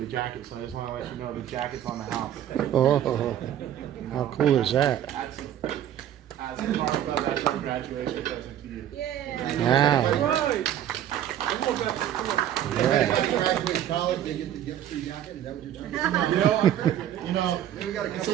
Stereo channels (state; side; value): quieter; left; 11.1 dB